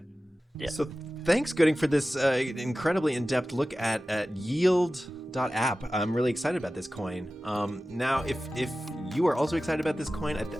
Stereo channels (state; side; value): normal; both; correlation 0.95